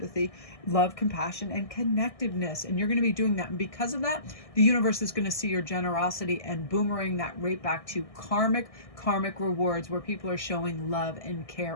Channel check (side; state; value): right; late; 1.6 ms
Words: love, compassion, and connectiveness. And you're going to be doing that. And because of that, the universe is going to see your generosity and boomerang that right back to karmic rewards, where people are showing love and care